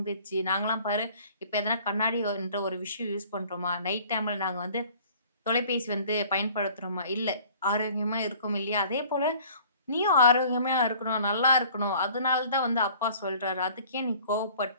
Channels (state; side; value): inverted; both; correlation -0.51